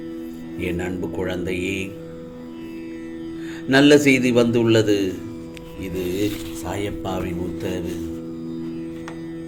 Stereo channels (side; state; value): both; identical; correlation 1.00